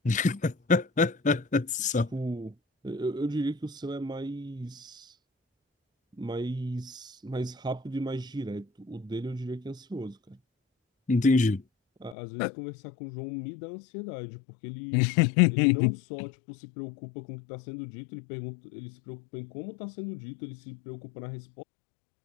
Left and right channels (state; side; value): drops out; right; at 12.2 s